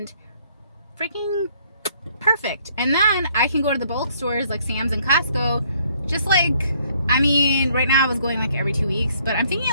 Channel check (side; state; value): both; inverted; correlation -0.65